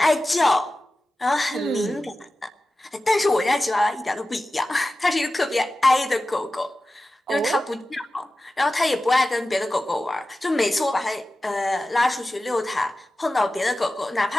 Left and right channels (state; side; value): normal; both; correlation 0.95